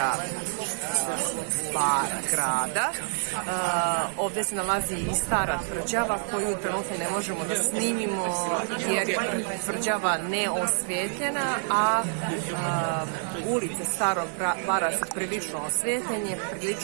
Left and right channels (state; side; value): silent; left; digital silence